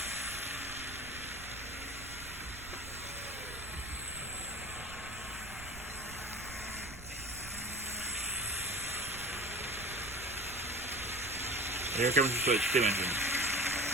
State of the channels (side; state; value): right; noise; rumble, 13 dB below the sound